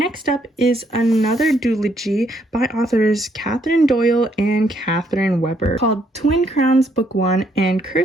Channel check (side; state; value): both; normal; correlation 0.71